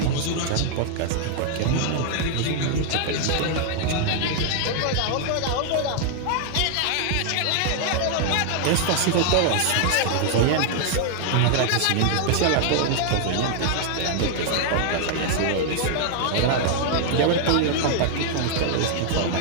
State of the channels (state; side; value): different; both; correlation 0.00